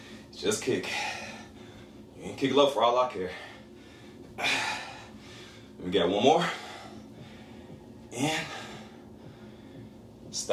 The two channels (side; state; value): both; identical; correlation 1.00